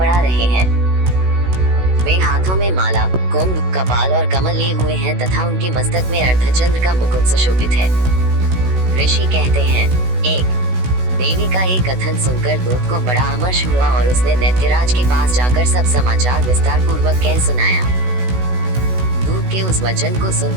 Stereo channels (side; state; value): left; late; 16 ms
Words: रहे हैं। वे हाथों में माला, कुंभ, कपाल और कमल लिए हुए हैं तथा उनके मस्तक में अर्धचंद्र का मुकुट सुशोभित है। ऋषि कहते हैं। 1। देवी का एक कथन सुनकर दूत को बड़ा अमर्ष हुआ और उसने दैत्यराज के पास जाकर सब समाचार विस्तार पूर्वक कह सुनाया। दूत के उस वचन को